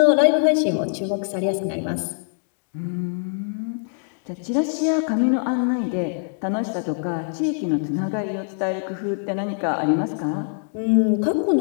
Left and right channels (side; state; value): right; silent; digital silence